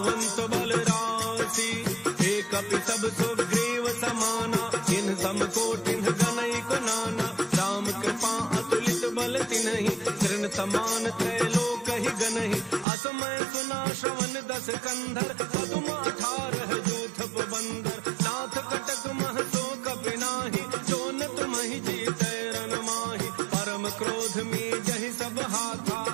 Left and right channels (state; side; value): drops out; left; at 12.9 s